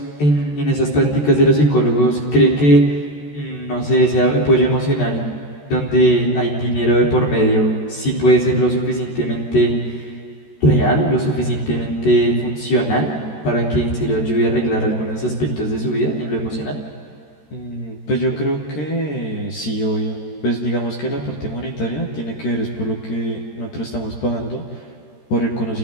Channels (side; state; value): right; late; 13 ms